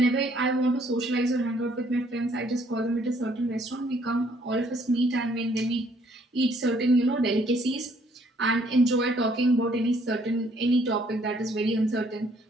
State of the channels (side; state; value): both; normal; correlation 0.65